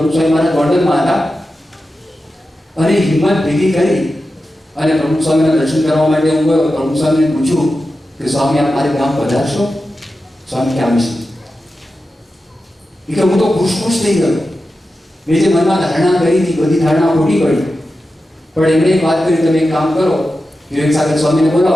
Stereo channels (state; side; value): normal; both; correlation 0.91